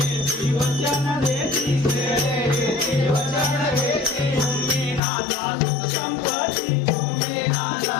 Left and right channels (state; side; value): drops out; right; at 5.0 s